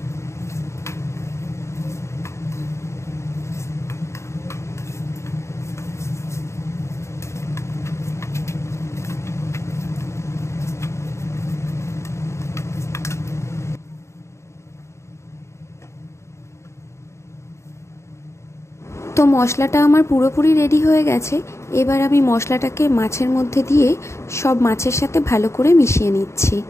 তো মশলাটা আমার পুরোপুরি রেডি হয়ে গেছে। এবার আমি মশলাটাকে মাছের মধ্যে দিয়ে সব মাছের সাথে ভালো করে মিশিয়ে নিচ্ছি।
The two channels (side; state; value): right; late; 0.14 ms